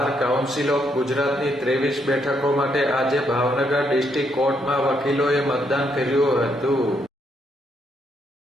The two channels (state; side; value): normal; both; correlation 0.75